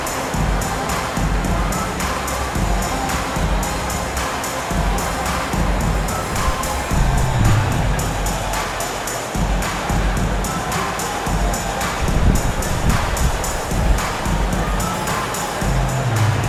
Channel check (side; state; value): both; identical; correlation 1.00